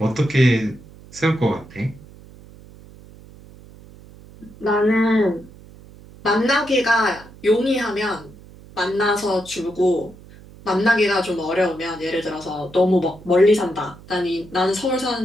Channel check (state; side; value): noise; right; hum, 21 dB below the sound